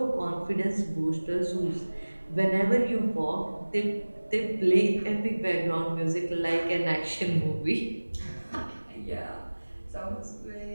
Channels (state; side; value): inverted; both; correlation -1.00